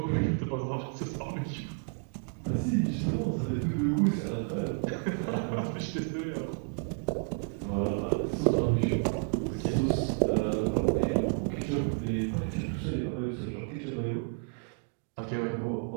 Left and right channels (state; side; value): quieter; left; 38.7 dB